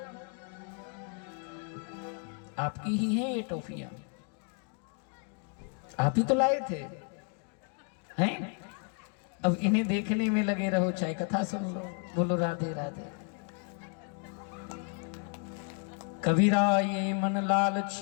आपकी ही है ये टॉफियां, आप ही तो लाए थे हैं? अब इन्हें देखने में लगे रहो, चाहे कथा सुन लो। बोलो राधे राधे। कबीरा ये मन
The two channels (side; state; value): right; quieter; 39.0 dB